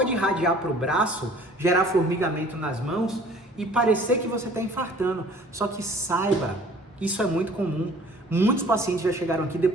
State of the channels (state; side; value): normal; both; correlation 0.51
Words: irradiar para o braço, gerar formigamento nas mãos e parecer que você está infartando. Só que saiba, isso é muito comum. Muitos pacientes já chegaram aqui